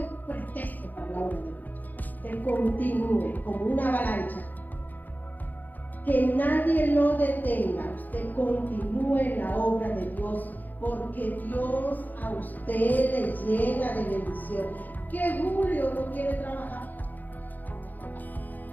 pretexto para la obra de Dios. Que continúe como una avalancha. Que nadie lo detenga. Usted continúe en la obra de Dios, porque Dios a usted le llena de bendición. Que Julio no quiere trabajar.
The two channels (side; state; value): right; late; 0.084 ms